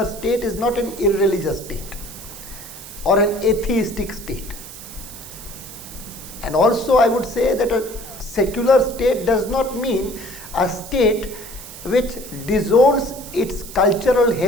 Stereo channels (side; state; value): right; noise; hiss, 14 dB below the sound